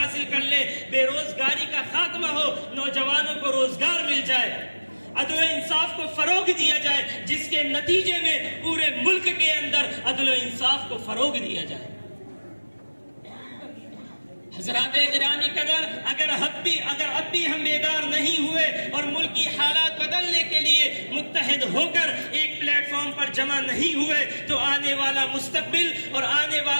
کر لیں، بے روزگاری کا خاتمہ ہو، نوجوانوں کو روزگار مل جائے، عدل و انصاف کو فروغ دیا جائے، جس کے نتیجے میں پورے ملک کے اندر عدل و انصاف کو فروغ دیا جائے۔ حضرات گرامی قدر، اگر اب بھی ہم بیدار نہیں ہوئے اور ملکی حالات بدلنے کے لیے متحد ہو کر ایک پلیٹ فارم پر جمع نہیں ہوئے تو آنے والا مستقبل اور آنے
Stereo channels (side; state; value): both; inverted; correlation -1.00